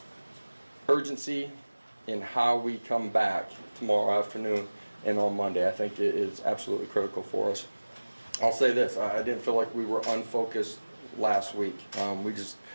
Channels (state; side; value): inverted; both; correlation -1.00